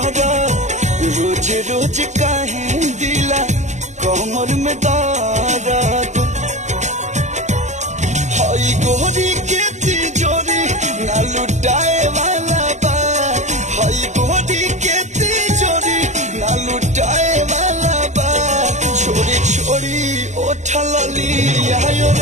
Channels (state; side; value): late; left; 0.34 ms